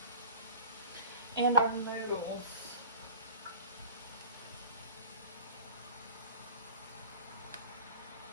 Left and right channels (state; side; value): inverted; both; correlation -0.38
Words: and our noodles.